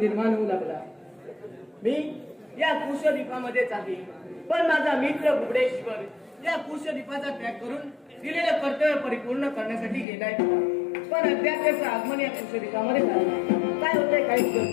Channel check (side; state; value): right; drops out; at 10.1 s